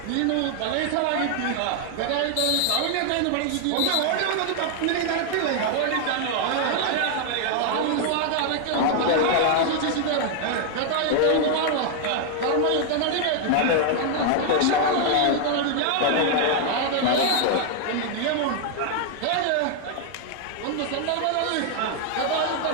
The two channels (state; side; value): different; both; correlation 0.00